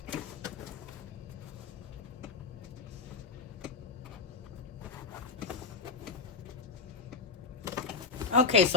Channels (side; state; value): right; quieter; 4.5 dB